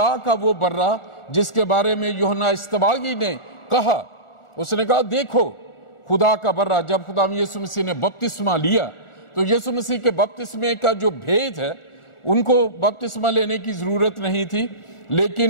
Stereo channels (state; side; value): late; right; 1.4 ms